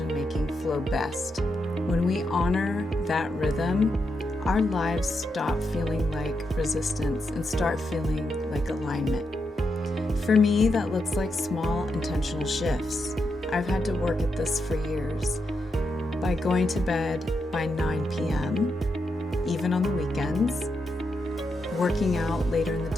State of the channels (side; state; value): both; normal; correlation 0.84